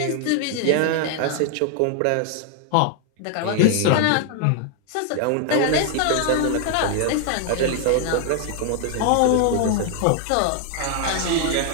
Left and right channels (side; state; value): both; different; correlation 0.00